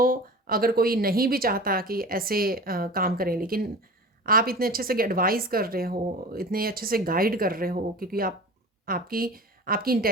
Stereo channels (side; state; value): both; normal; correlation 0.36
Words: अगर कोई नहीं भी चाहता कि ऐसे काम करें, लेकिन आप इतने अच्छे से एडवाइस कर रहे हो, इतने अच्छे से गाइड कर रहे हो, क्योंकि आपकी आपकी